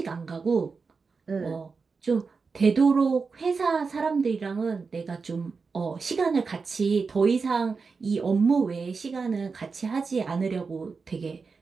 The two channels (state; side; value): quieter; left; 4.8 dB